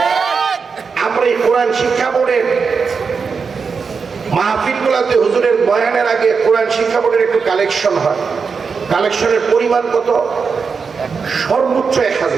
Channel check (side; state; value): left; quieter; 5.4 dB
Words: আমরা এই কোরআন শিক্ষা বোর্ডের মাহফিল গুলাতে হুজুরের বয়ানের আগে কোরআন শিক্ষা বোর্ডের একটু কালেকশন হয়। কালেকশনের পরিমাণ কত? সর্বোচ্চ